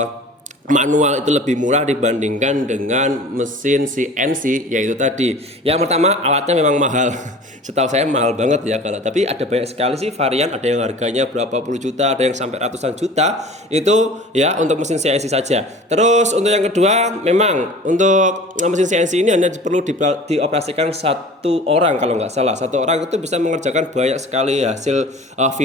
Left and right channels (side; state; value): both; normal; correlation 0.42